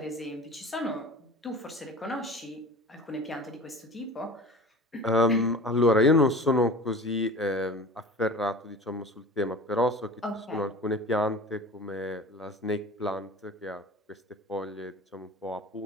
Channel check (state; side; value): normal; both; correlation 0.38